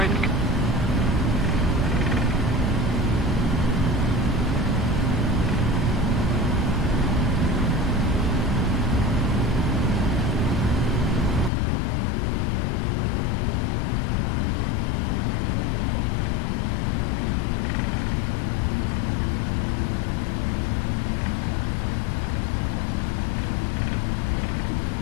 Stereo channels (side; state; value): right; drops out; at 11.5 s